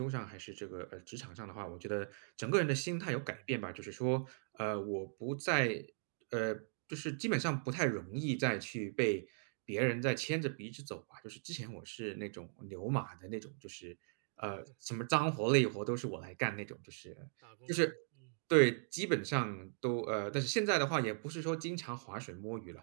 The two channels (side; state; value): left; silent; digital silence